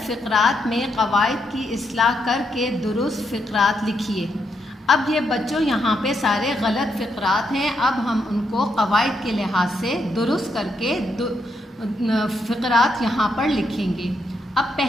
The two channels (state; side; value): normal; both; correlation 0.79